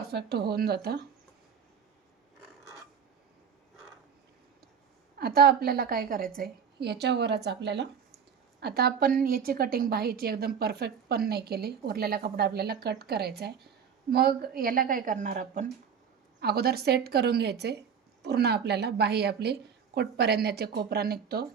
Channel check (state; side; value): quieter; left; 7.2 dB